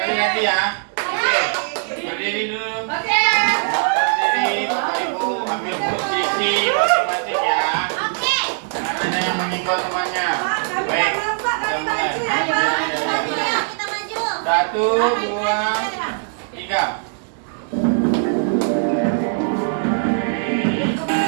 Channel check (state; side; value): silent; left; 61 dB below the other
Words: lagi ya. Berdiri dulu. Oke. Berdiri, Bapak Ibu ambil posisi masing-masing ya. Oke. Ada yang menyenggol temannya. Baik. Kita mulai. Maju ya, kita maju. 1, 2, 3.